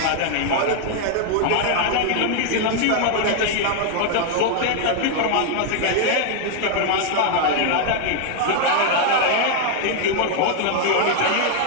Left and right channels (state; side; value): different; both; correlation 0.00